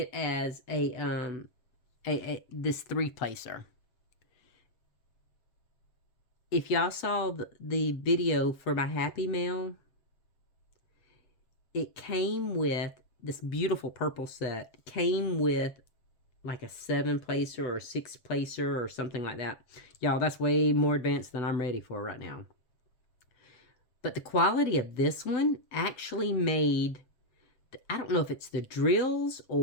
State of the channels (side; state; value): right; late; 7.6 ms